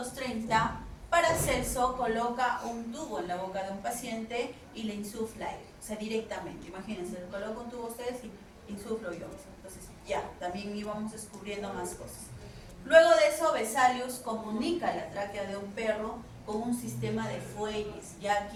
Paracelso coloca un tubo en la boca de un paciente y le insufla aire, o sea, directamente. Imagínense, le coloco un tubo a ustedes y insuflo yo. Entonces, ya, también íbamos descubriendo más cosas. Luego de eso, Vesalius comunica la tráquea de un perro con un sistema de fuelles, ya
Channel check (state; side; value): identical; both; correlation 1.00